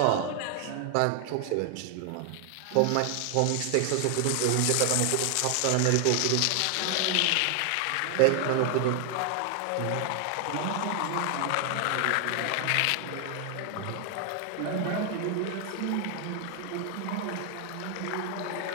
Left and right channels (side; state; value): both; different; correlation 0.00